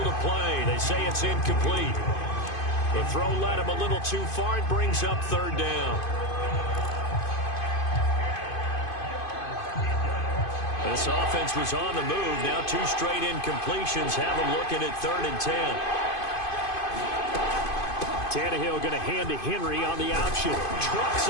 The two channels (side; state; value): right; late; 2.5 ms